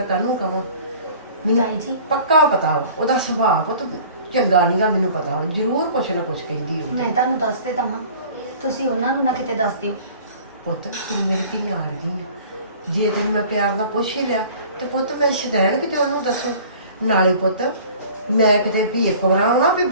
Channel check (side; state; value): both; inverted; correlation -0.47